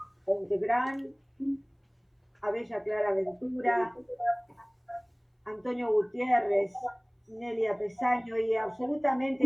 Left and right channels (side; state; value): both; identical; correlation 1.00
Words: Ontegrán, a Bella Clara Ventura, Antonio Gutiérrez, Nélida Pesaño y